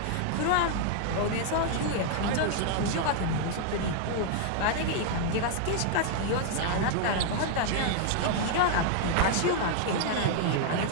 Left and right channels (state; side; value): different; both; correlation 0.00